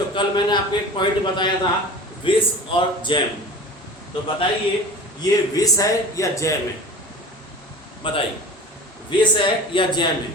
कल मैंने आपको एक पॉइंट बताया था विष और जैम, तो बताइए ये विष है या जैम है? बताइए, विष है या जैम है?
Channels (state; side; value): normal; both; correlation 0.37